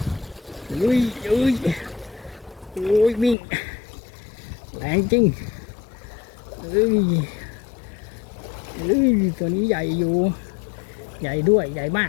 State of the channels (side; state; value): right; drops out; at 3.4 s